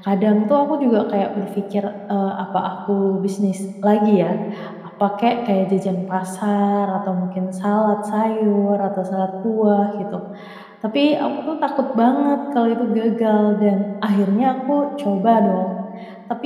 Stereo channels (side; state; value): both; identical; correlation 1.00